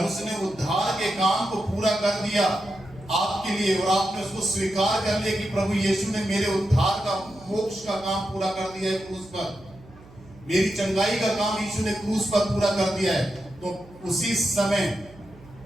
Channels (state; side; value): noise; right; hum, 22 dB below the sound